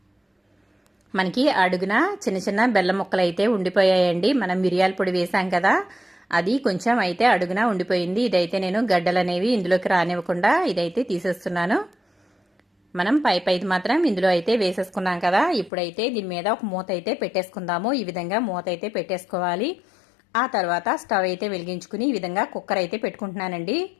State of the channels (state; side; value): drops out; right; at 15.7 s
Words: మనకి అడుగున చిన్న చిన్న బెల్లం ముక్కలు అయితే ఉండిపోయాయండి. మనం మిరియాల పొడి వేసాం కదా, అది కొంచెం అయితే అడుగున ఉండిపోయింది. ఇదైతే నేను గడ్డలు అనేవి ఇందులోకి రానివ్వకుండా ఇదైతే తీసేస్తున్నాను. మనం పైది మాత్రం ఇందులో అయితే వేసేసుకున్నాం కదా. ఇప్పుడైతే దీని మీద ఒక మూత అయితే పెట్టేసుకుందాము. ఈ విధంగా మూత అయితే పెట్టేసుకోవాలి. ఆ తర్వాత స్టవ్ అయితే వెలిగించుకుని ఈ విధంగా కుక్కర్ అయితే పెట్టుకుంటున్నానండి.